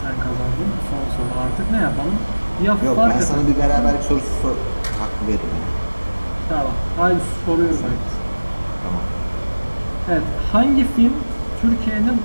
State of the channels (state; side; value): inverted; both; correlation -1.00